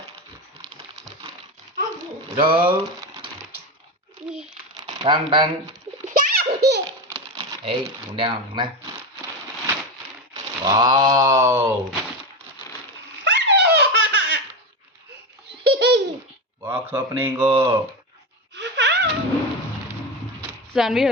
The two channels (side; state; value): both; normal; correlation 0.18